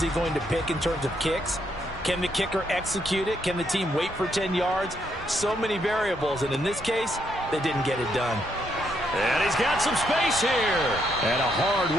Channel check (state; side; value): normal; both; correlation 0.75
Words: he going to pick in terms of kicks? Can the kicker execute it? Can the team wait for 10 yards? So many variables, and in this case, they didn't get it done. And he's got some space here. And a